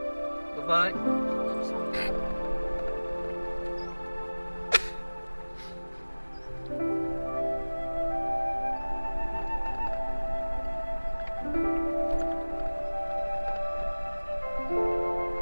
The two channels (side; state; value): both; inverted; correlation -1.00